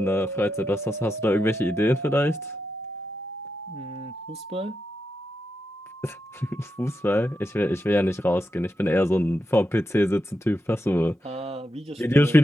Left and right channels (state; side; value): normal; both; correlation 0.87